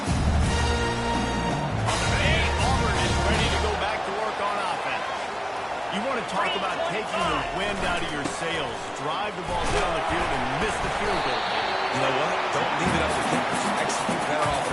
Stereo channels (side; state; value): both; identical; correlation 1.00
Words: Auburn is ready to go back to work on offense. You want to talk about taking the wind out of your sails. Drive the ball down the field and miss the field goal. You know what? Don't leave it up to him. Execute better